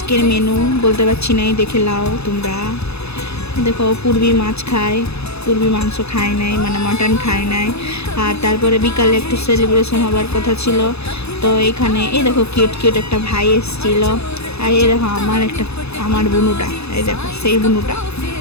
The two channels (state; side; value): late; right; 0.79 ms